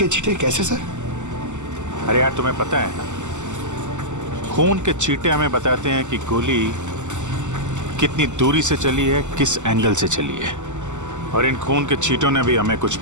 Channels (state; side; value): late; left; 0.84 ms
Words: छींटे कैसे सर? अरे यार तुम्हें पता है ना, खून के छींटे हमें बताते हैं कि गोली कितनी दूरी से चली है, किस एंगल से चली है। और इन खून के छींटों ने भी हमें कुछ